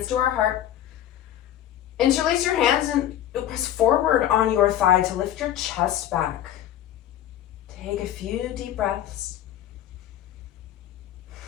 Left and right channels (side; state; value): right; quieter; 11.9 dB